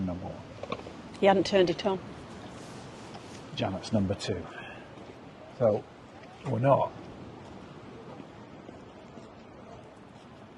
number 1. You hadn't turned it on. Janet's number 2. So we're not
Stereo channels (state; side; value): identical; both; correlation 1.00